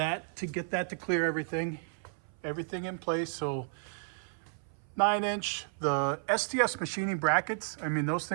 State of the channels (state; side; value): silent; left; 56 dB below the other